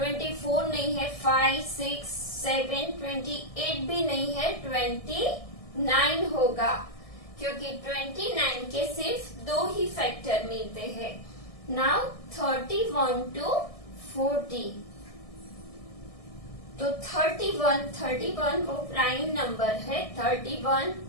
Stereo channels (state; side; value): late; right; 1.6 ms